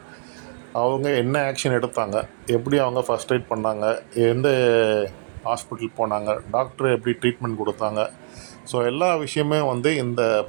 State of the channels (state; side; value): silent; left; digital silence